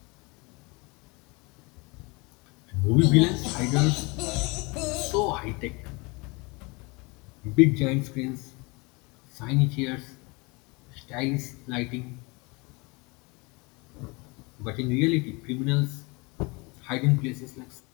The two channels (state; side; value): quieter; right; 27.3 dB